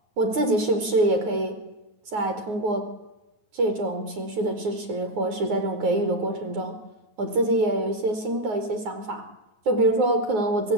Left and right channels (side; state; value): left; late; 9.6 ms